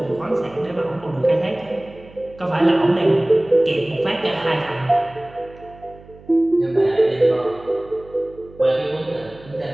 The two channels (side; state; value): right; noise; hum, 22 dB below the sound